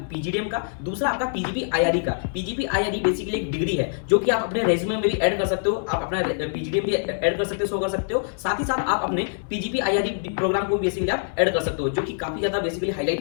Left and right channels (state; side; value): silent; right; 62 dB below the other